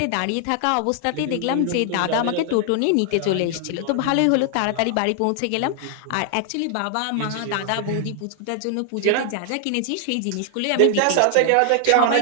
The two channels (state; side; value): different; both; correlation 0.00